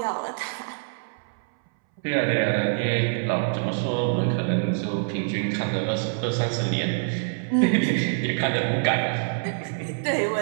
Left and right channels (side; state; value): left; silent; 61 dB below the other